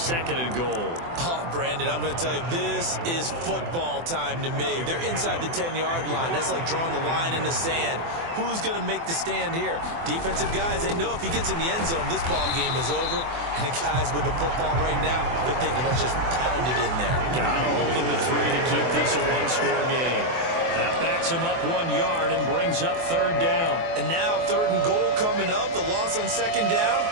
and goal. Oh, Brandon, I'm going to tell you, this is football time to me. They're inside the 10-yard line. That's like drawing the line in the sand. Who's going to make the stand here? Defensive guys, they know if he gets in the end zone, this ball game is over. And the guys with the football right now, they're thinking, let's just pound it in there. Got to hold him to 3 to keep this a one-score game. That backs him up 1 yard and brings up 3rd down. And now 3rd and goal coming up. The loss on 2nd down.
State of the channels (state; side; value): late; left; 24 ms